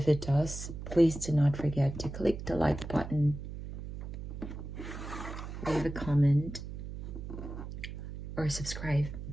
it does, please do not forget to click the like button, leave a comment, or subscribe.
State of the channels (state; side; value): noise; right; hum, 9 dB below the sound